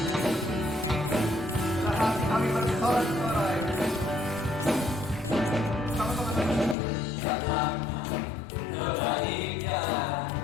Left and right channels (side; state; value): right; drops out; at 6.8 s